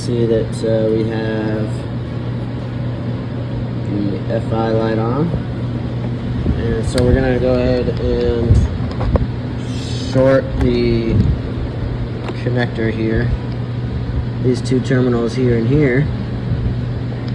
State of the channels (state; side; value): identical; both; correlation 1.00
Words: that we have the FI light on. And so we're going to go ahead and short the connector here. These two terminals here and here.